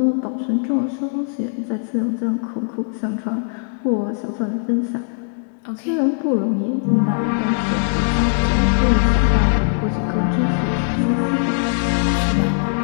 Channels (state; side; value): silent; right; digital silence